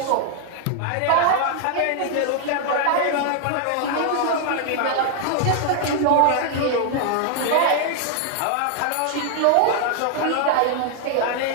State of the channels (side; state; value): both; different; correlation 0.00